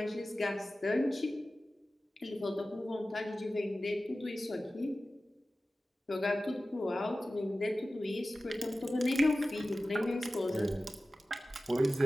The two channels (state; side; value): normal; both; correlation 0.95